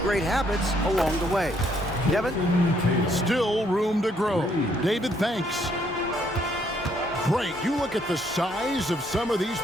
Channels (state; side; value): normal; both; correlation 0.69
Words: great habits along the way. Kevin? Still room to grow. David, thanks. Great. You look at the size of some of these